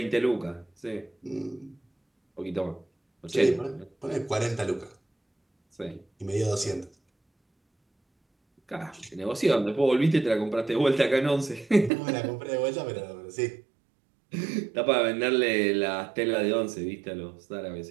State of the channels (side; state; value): left; drops out; at 11.9 s